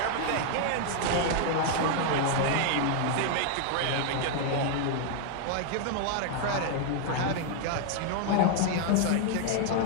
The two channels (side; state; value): both; different; correlation 0.00